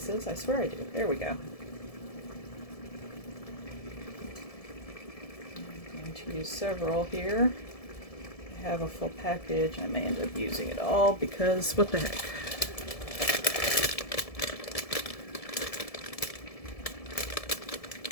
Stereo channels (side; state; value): right; late; 1.7 ms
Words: I swear I do. There we go. I'm going to use several here. I have a full package. I may end up using it all because what the heck.